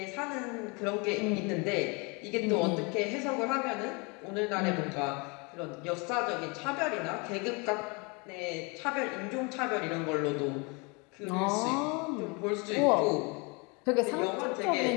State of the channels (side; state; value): right; quieter; 30.2 dB